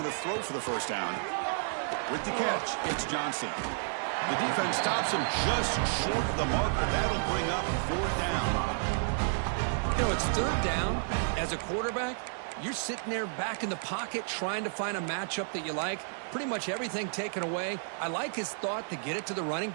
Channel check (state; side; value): silent; left; digital silence